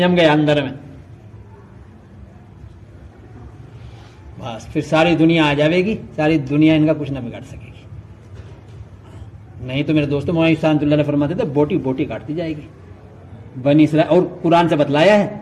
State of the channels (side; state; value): both; identical; correlation 1.00